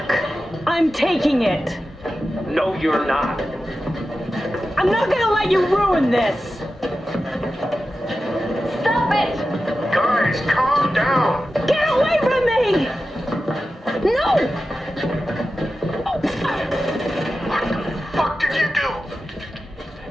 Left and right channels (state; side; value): normal; both; correlation 0.92